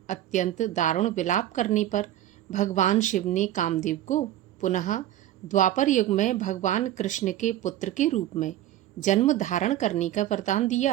अत्यंत दारुण विलाप करने पर भगवान शिव ने कामदेव को पुनः द्वापर युग में भगवान कृष्ण के पुत्र के रूप में जन्म धारण करने का वरदान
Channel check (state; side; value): quieter; left; 13.0 dB